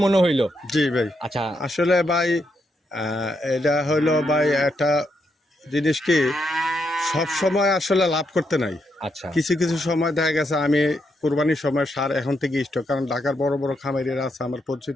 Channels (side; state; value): both; normal; correlation 0.80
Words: মনে হইলো। জি ভাই, আচ্ছা আসলে ভাই এটা হইলো ভাই একটা জিনিস কি, সব সময় আসলে লাভ করতে নাই। আচ্ছা কিছু কিছু সময় দেখা গেছে আমি কোরবানির সময় সার এখন থেকে স্টক, কারণ ঢাকার বড় বড় খামারিরা আছে আমার